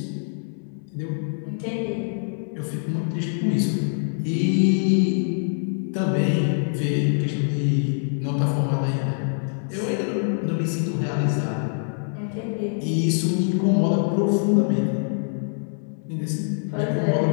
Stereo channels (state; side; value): silent; right; 62 dB below the other